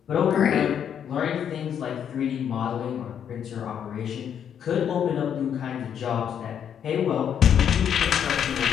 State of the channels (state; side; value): quieter; right; 8.6 dB